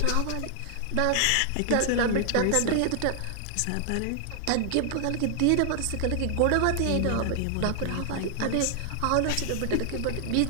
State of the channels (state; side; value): different; both; correlation 0.00